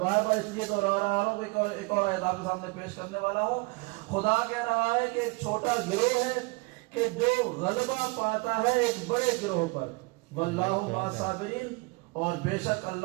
بار اس لیے دہرا رہا ہوں کہ ایک اور آیت آپ کے سامنے پیش کرنے والا ہوں۔ خدا کہہ رہا ہے کہ ایک چھوٹا گروہ ہے کہ جو غلبہ پاتا ہے ایک بڑے گروہ پر، واللہ مع الصابرین، اور بے شک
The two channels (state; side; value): quieter; left; 27.7 dB